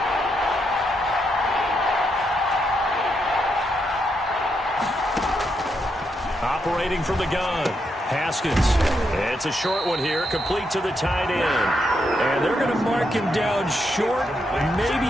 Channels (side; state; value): both; normal; correlation 0.80